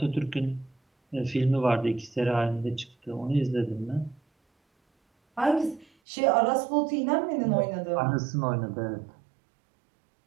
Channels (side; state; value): left; drops out; at 5.9 s